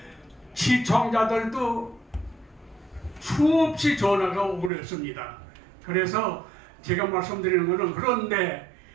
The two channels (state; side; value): drops out; left; at 4.7 s